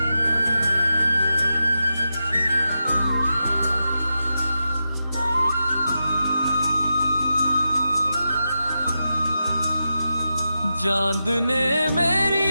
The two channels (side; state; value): both; inverted; correlation -0.89